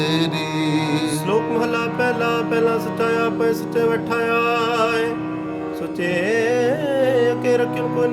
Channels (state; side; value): identical; both; correlation 1.00